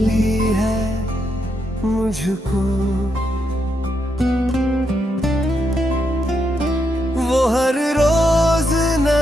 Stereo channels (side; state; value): both; normal; correlation 0.81